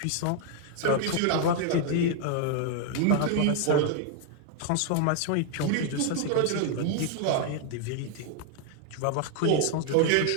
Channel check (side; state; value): both; different; correlation 0.00